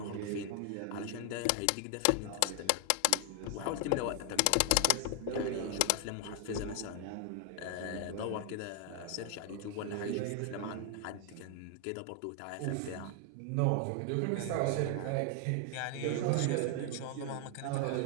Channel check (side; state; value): both; different; correlation 0.00